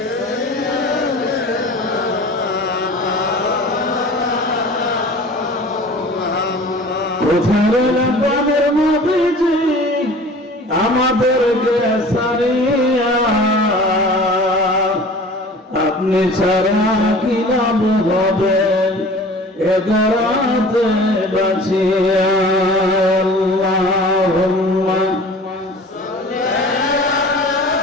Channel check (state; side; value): normal; both; correlation 0.43